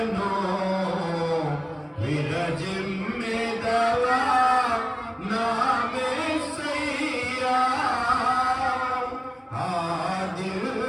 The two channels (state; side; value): identical; both; correlation 1.00